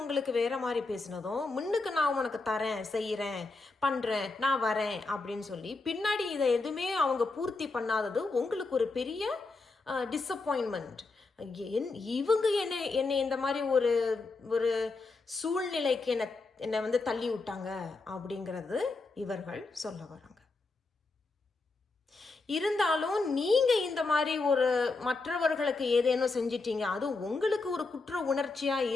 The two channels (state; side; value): quieter; right; 3.7 dB